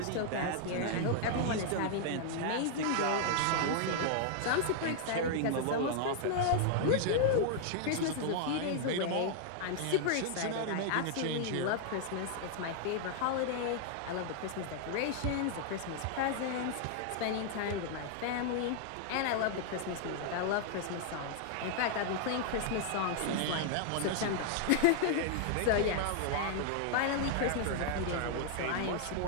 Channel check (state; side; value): different; both; correlation -0.01